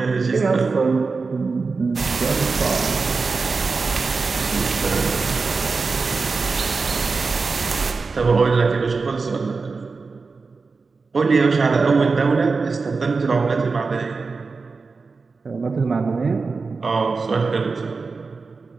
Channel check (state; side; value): quieter; left; 4.4 dB